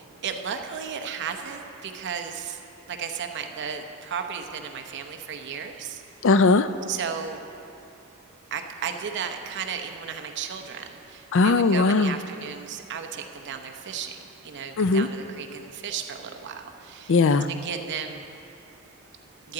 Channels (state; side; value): normal; both; correlation 0.22